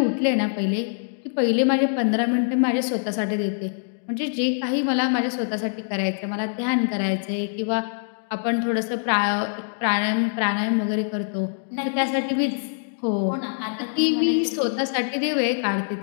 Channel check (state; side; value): silent; right; digital silence